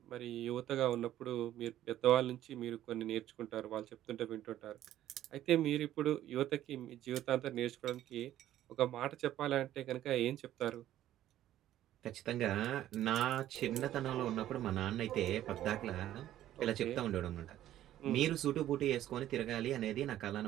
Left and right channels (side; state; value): left; quieter; 12.8 dB